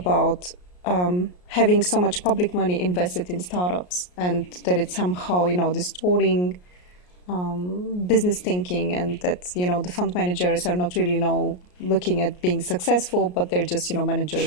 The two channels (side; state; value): right; late; 33 ms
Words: having so much public money invested in startups, and that it's somehow, distorting business thinking, and that, the fund managers are not really, looking at being successful, but they're just,